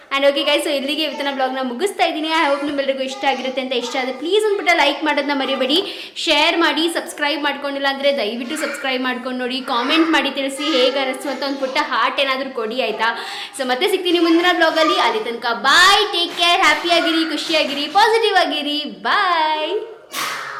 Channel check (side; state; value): both; identical; correlation 1.00